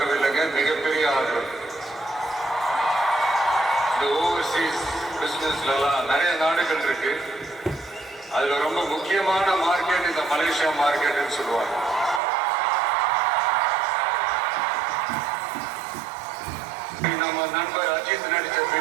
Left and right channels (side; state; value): left; drops out; at 12.2 s